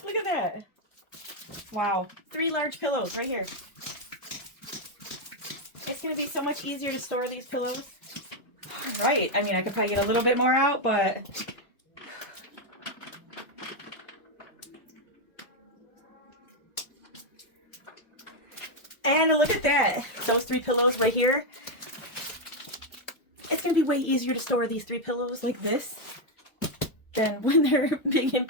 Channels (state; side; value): late; right; 2.0 ms